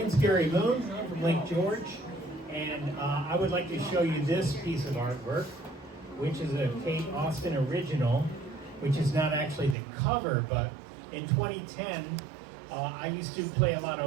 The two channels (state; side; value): drops out; left; at 9.8 s